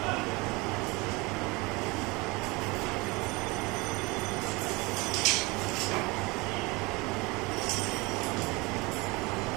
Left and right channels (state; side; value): quieter; left; 25.0 dB